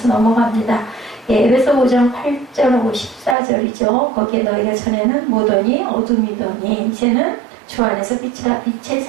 넘어갑니다. 예, 에베소 5장 8절하고 14절이죠. 거기에 너희가 전에는 무더니 어둠이더니 이제는 주 안에서 빛의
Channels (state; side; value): drops out; left; at 3.4 s